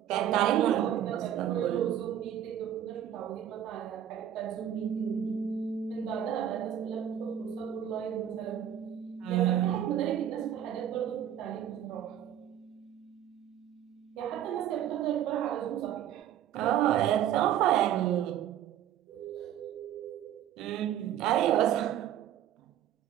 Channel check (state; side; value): quieter; left; 10.6 dB